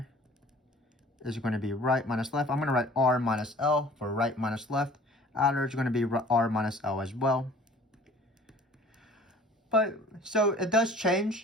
is going to be right minus left. I'm going to write R minus L for right minus left. Outer is going to be R minus L as well. But so it does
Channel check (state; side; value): normal; both; correlation 0.49